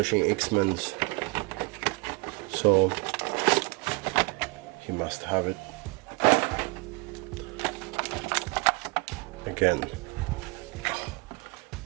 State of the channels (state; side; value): quieter; left; 27.5 dB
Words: X-Men, so he must have it. Again,